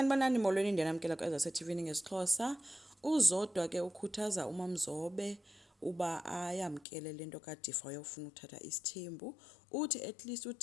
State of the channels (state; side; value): drops out; right; at 6.9 s